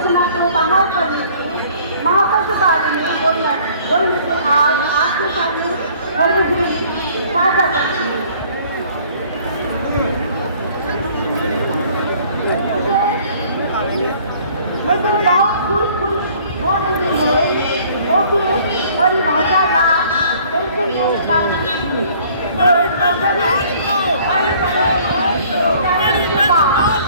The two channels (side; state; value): both; inverted; correlation -0.55